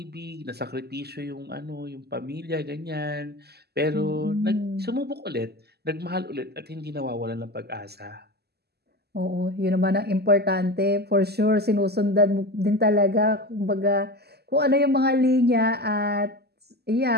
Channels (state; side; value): late; left; 0.47 ms